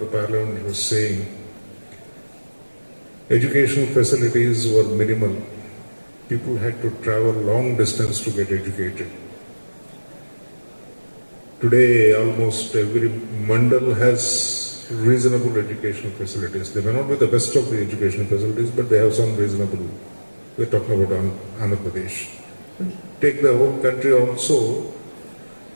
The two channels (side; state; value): both; inverted; correlation -1.00